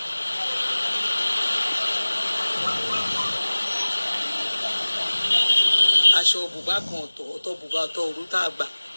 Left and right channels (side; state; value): both; inverted; correlation -1.00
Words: aṣọ bùbá kan ọ̀tọ̀ bùbá ọ̀tọ̀ òru tá a gbà